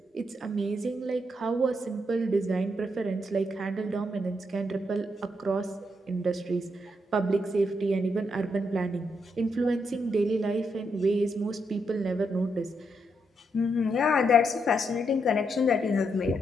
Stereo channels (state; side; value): normal; both; correlation 0.79